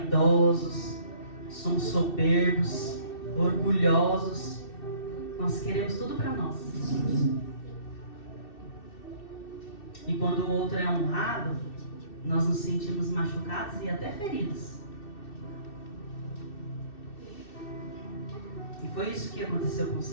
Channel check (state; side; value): late; right; 2.6 ms